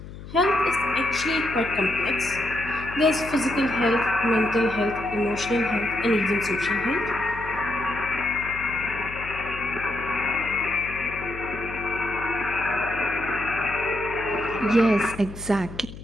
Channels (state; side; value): noise; left; hum, 13 dB below the sound